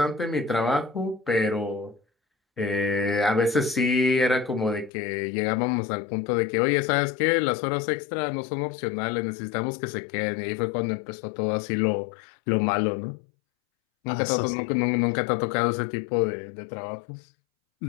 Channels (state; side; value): drops out; right; at 4.9 s